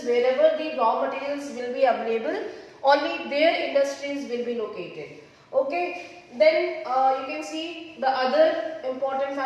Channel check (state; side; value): identical; both; correlation 1.00